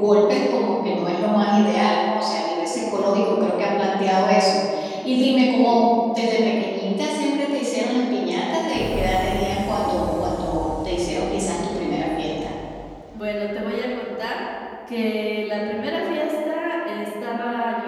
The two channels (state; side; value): identical; both; correlation 1.00